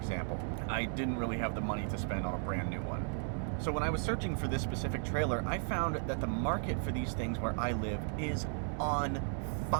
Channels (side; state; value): left; silent; 54 dB below the other